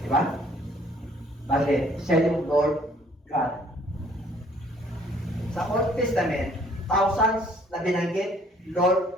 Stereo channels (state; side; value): normal; both; correlation 0.60